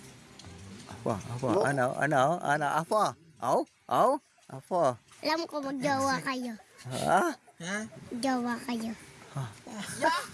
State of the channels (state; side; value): identical; both; correlation 1.00